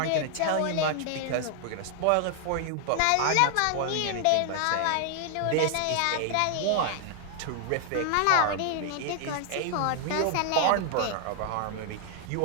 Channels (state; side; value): different; both; correlation 0.00